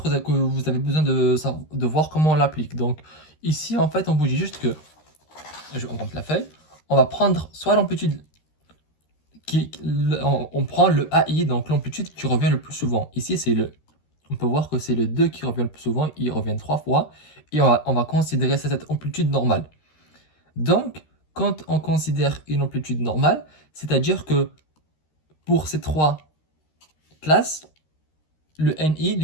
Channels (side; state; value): right; late; 13 ms